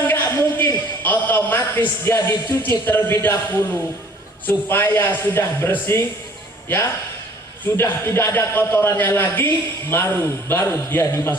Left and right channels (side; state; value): both; normal; correlation 0.54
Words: nggak mungkin. Otomatis dia dicuci terlebih dahulu supaya sudah bersih, ya, sudah tidak ada kotorannya lagi, baru dia